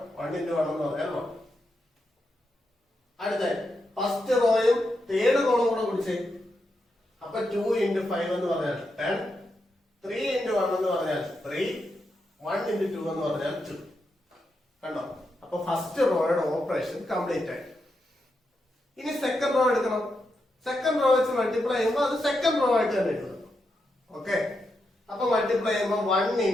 എന്ന് പറഞ്ഞാൽ 1. അടുത്ത ഫസ്റ്റ് റോയും തേർഡ് കോളം കൂടെ വിളിച്ചേ. അപ്പൊ 2 into 5 എന്ന് പറഞ്ഞാൽ 10. 3 into 1 എന്ന് പറഞ്ഞാൽ 3. 1 into 2 എന്ന് പറഞ്ഞാൽ 2. കണ്ടോ? അപ്പൊ ഫസ്റ്റ് റോയുടെ ഓപ്പറേഷൻ കംപ്ലീറ്റ് ആയി. ഇനി സെക്കൻഡ് റോ എടുക്കണം. സെക്കൻഡ് റോ വെച്ച് മൾട്ടിപ്ലൈ ചെയ്യുമ്പോൾ അത് സെക്കൻഡ് റോ ആയിട്ട് തന്നെ എഴുതണം. ഓക്കെ, അപ്പൊ മൾട്ടിപ്ലൈ ചെയ്യുമ്പോൾ 1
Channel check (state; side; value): normal; both; correlation 0.84